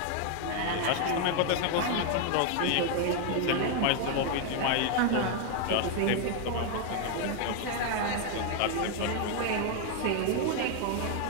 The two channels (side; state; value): both; different; correlation 0.00